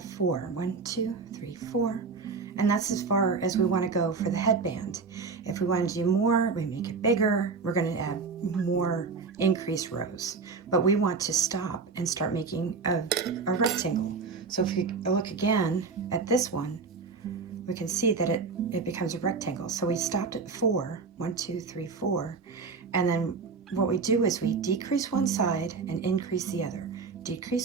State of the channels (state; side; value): quieter; left; 4.8 dB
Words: 4. 1, 2, 3, 4. And that's as far as we want to go for the headband. If we want to do more, we make it bigger. We're going to add more increased rows. But we want to stop and start making a rectangle. So if we look again at this one, we can see that it becomes a rectangle. So we stopped at 4. 1, 2, 3, 4. And then what we do is we decrease one side and increase the other.